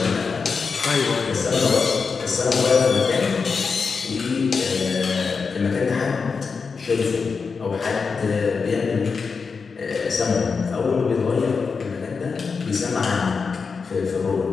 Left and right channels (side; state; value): right; quieter; 5.1 dB